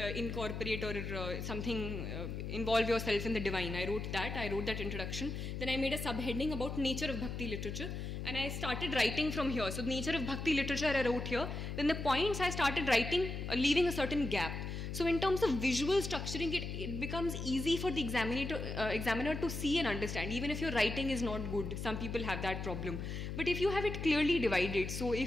incorporate or something, involve yourself in the divine. I wrote that introduction. Then I made a subheading about nature of Bhakti literature. And I started writing from here. So the nature of Bhakti literature I wrote here. Then the points I started writing, leaving a certain gap. So in terms of visual structuring, it becomes easy for the examiner to see and understand, even if your writing is not good. Some people have that problem. But if you have it clearly divided, so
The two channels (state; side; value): noise; left; hum, 5 dB below the sound